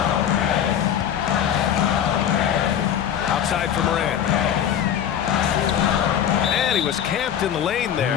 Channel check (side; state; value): right; quieter; 9.5 dB